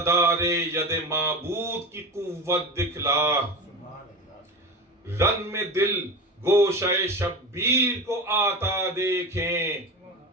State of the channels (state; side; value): normal; both; correlation 0.25